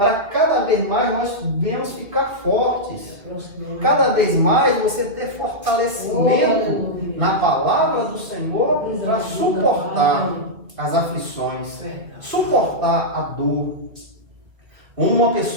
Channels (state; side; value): late; left; 2.2 ms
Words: cada vez mais nós venhamos ficar fortes. Cada vez mais você ter fortalecimento na palavra do Senhor para suportar as aflições, suportar a dor. Uma